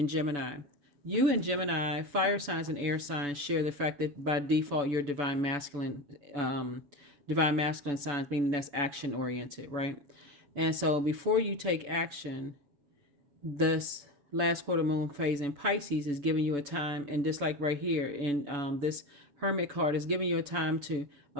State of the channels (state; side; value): late; left; 7.0 ms